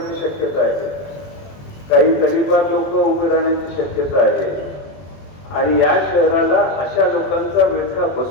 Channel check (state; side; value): late; right; 21 ms